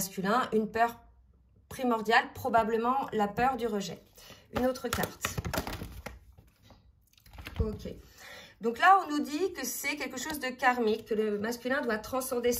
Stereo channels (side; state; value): both; identical; correlation 1.00